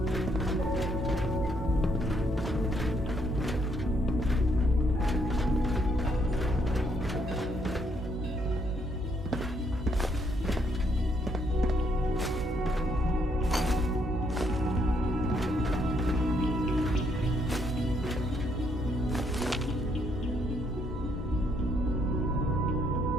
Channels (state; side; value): normal; both; correlation 0.72